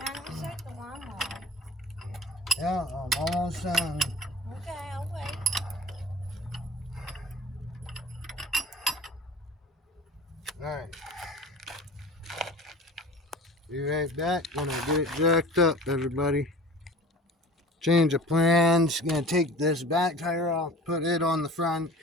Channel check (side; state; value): both; normal; correlation 0.41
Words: we set the lawnmower. Yeah, I'm Almost done. Okay, I'll wait. Alright. Be right back when I get it jacked up, everybody. Change of plans. Gonna take this back tire off, put it on the front,